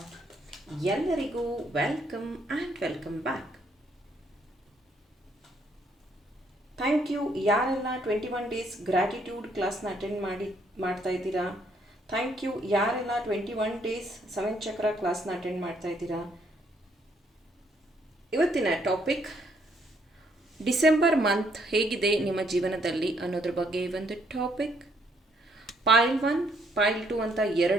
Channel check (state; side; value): normal; both; correlation 0.70